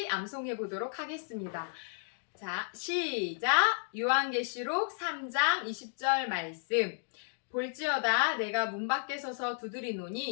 암송해 보도록 하겠습니다. 자, 시작! 요한계시록 3장 20절 말씀. 볼지어다 내가 문 밖에 서서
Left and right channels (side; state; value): right; silent; digital silence